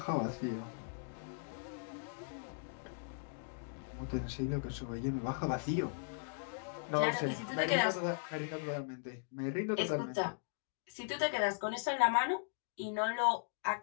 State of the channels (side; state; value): right; silent; digital silence